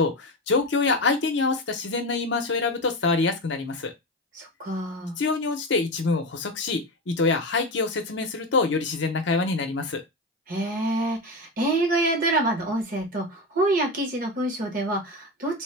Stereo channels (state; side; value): normal; both; correlation 0.20